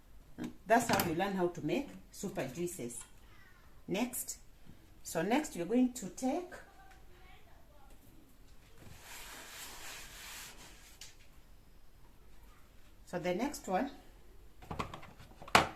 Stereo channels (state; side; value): identical; both; correlation 1.00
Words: That's how you learn how to make super juices. Next, we're going to take the next one,